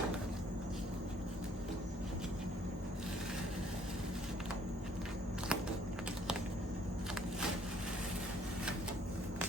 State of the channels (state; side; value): normal; both; correlation 0.62